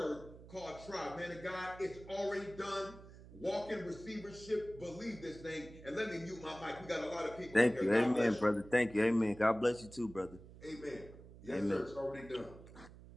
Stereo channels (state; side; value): noise; right; hum, 18 dB below the sound